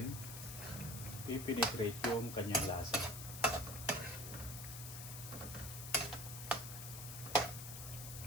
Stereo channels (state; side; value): noise; left; hiss, 8 dB below the sound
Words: i-penetrate yung kanyang lasa.